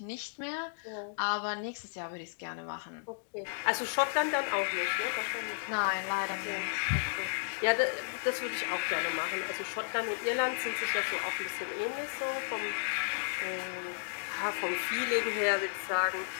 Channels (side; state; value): right; silent; digital silence